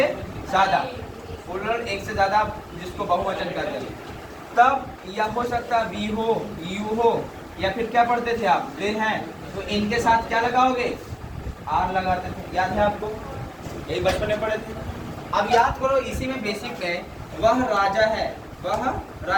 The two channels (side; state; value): both; identical; correlation 1.00